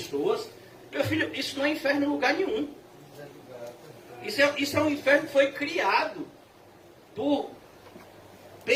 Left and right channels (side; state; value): both; identical; correlation 1.00